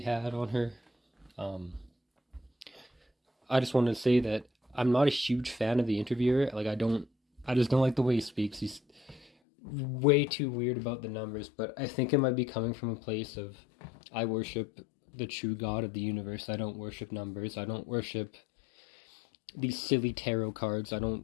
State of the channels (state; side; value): drops out; right; at 9.3 s